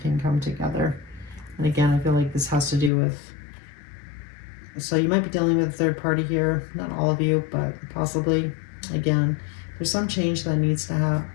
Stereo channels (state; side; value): drops out; right; at 2.9 s